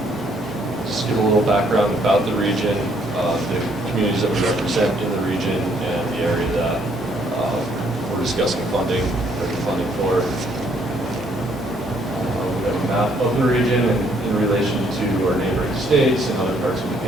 just give a little background about the region, the communities that we represent in the region, and the area that we're discussing funding for. We have a map of the region in relation to our neighboring states and other parts of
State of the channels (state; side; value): normal; both; correlation 0.67